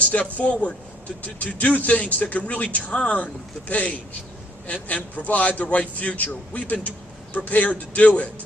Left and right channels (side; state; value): both; normal; correlation 0.67